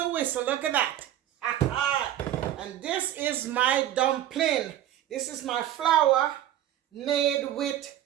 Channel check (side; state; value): left; quieter; 12.1 dB